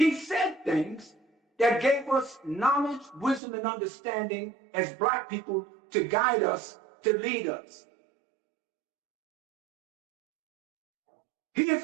said things that gave us knowledge, wisdom, and understanding as black people to guide us, to lead us. He is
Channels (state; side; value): drops out; left; at 3.4 s